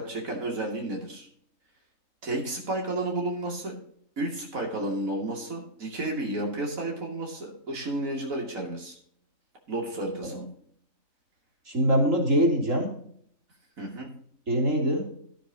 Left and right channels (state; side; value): late; left; 4.1 ms